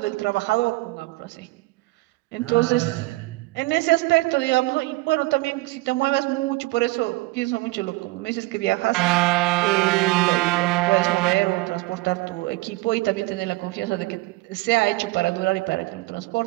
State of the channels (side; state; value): left; quieter; 21.4 dB